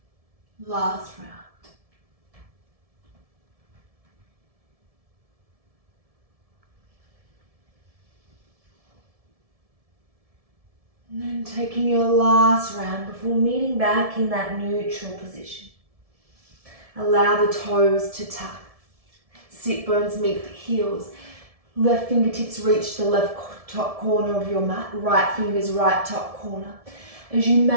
Last round. And then taking your last round before meeting back in that neutral position. Allow the toes to tuck. Sit bones meet the heels. Left fingertips reach the left top corner of your mat. Right fingers right top corner. As you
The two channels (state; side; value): late; left; 1.7 ms